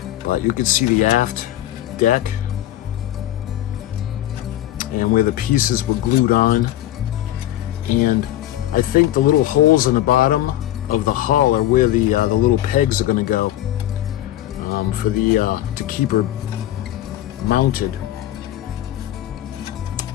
But you can see the aft deck and where the pieces were glued on. And I think the little holes in the bottom of the hull are where the little pegs are going to go to keep her mounted.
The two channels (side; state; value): right; quieter; 13.4 dB